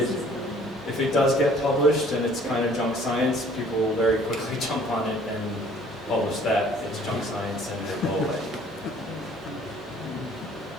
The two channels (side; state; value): both; normal; correlation 0.56